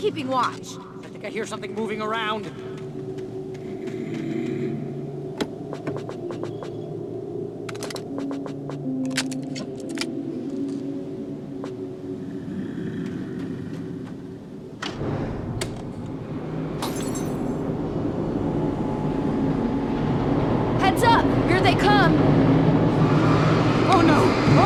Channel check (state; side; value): identical; both; correlation 1.00